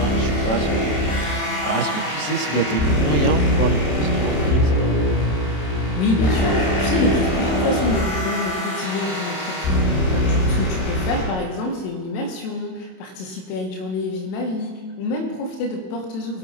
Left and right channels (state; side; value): late; right; 27 ms